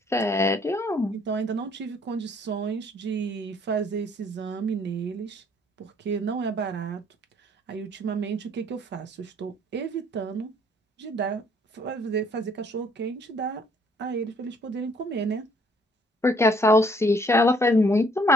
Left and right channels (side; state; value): both; normal; correlation 0.62